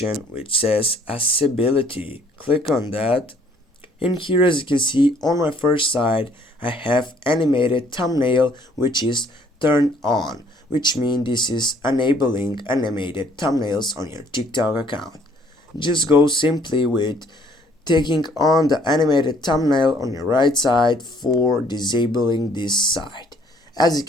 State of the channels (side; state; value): both; normal; correlation 0.61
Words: which says accessibility. Click on that. In here, as you can see on my first side, I have animated thumbnail which is turned on, which means this is enabling animated thumbnails on your TikTok account. Just go simply with taking on the animated thumbnail on your right side for disabling this side. As you